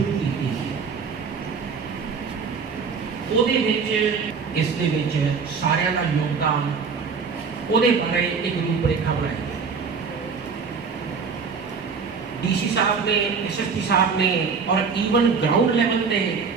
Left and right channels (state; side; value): quieter; left; 5.4 dB